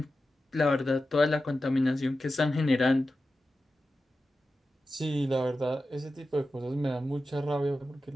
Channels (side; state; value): both; normal; correlation 0.92